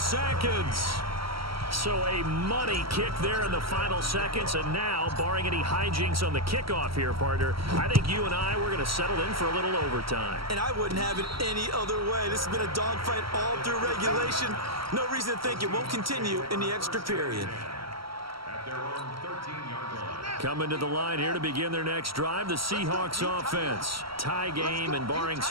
So a money kick there in the final seconds. And now, barring any hijinks on the kickoff here, partner, I think you and I, we're going to settle in for a little overtime. And I wouldn't have it any other way. This has been a dogfight all through regulation. No reason to think it won't continue in the extra period. At their own 13-yard line. Coming to the line here to begin their next drive, the Seahawks offense. Tie game, and barring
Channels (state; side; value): late; left; 0.75 ms